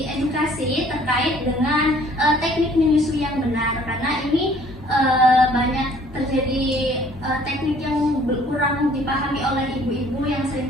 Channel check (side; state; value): both; normal; correlation 0.57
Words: edukasi terkait dengan teknik menyusui yang benar, karena ini banyak terjadi teknik yang kurang dipahami oleh ibu-ibu yang sering